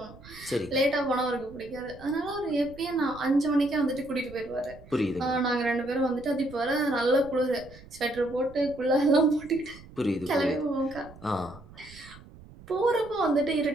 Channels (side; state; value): right; noise; rumble, 20 dB below the sound